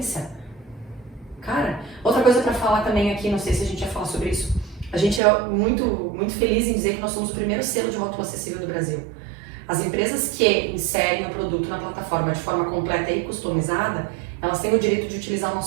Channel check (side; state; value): left; drops out; at 5.2 s